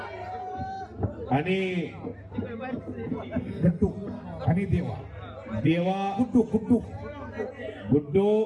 आणि गट्टू आणि देवा गुड्डू गुड्डू गुड्डू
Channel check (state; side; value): identical; both; correlation 1.00